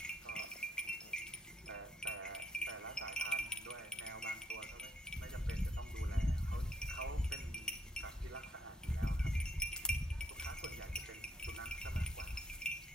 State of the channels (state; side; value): normal; both; correlation 0.71